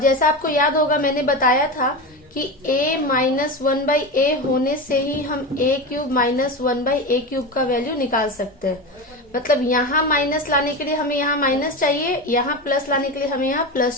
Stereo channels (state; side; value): normal; both; correlation 0.22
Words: आपको याद होगा मैंने बताया था कि a माइनस 1 बाई a होने से ही हम a cube minus 1 by a cube का वैल्यू निकाल सकते हैं। मतलब यहाँ माइनस लाने के लिए हमें यहाँ माइनस चाहिए, यहाँ प्लस लाने के लिए हमें यहाँ